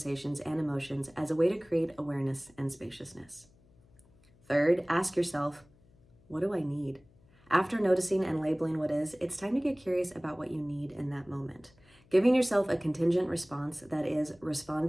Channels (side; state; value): left; noise; hum, 29 dB below the sound